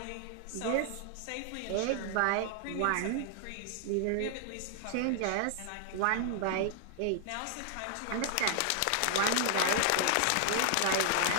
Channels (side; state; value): both; different; correlation 0.00